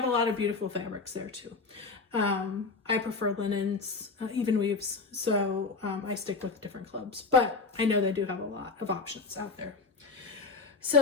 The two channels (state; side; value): quieter; right; 4.2 dB